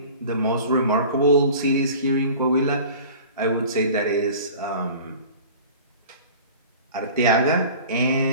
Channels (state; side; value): inverted; both; correlation -0.42